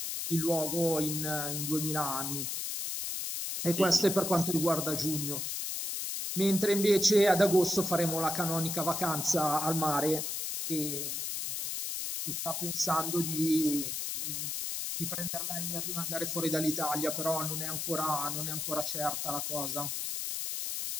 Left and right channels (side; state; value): left; noise; hiss, 3 dB below the sound